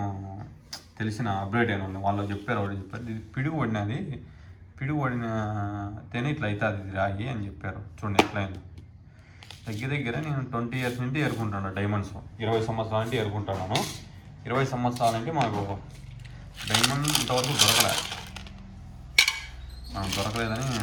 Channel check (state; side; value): identical; both; correlation 1.00